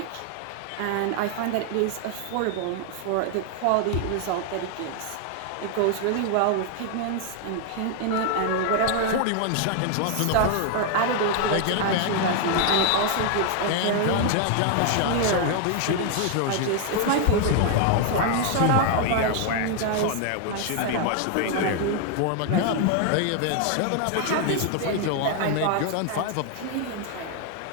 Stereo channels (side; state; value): both; different; correlation 0.00